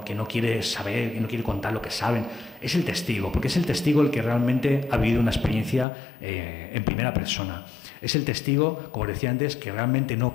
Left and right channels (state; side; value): drops out; right; at 5.9 s